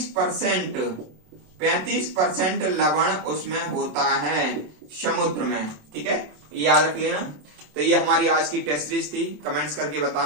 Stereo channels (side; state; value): left; late; 27 ms